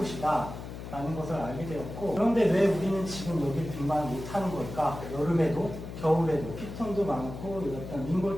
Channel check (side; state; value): left; noise; hum, 10 dB below the sound